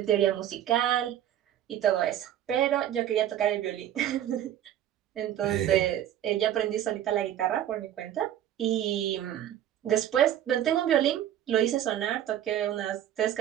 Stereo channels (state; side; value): quieter; left; 11.4 dB